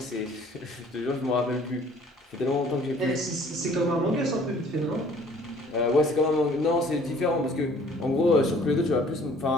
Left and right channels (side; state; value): both; normal; correlation 0.55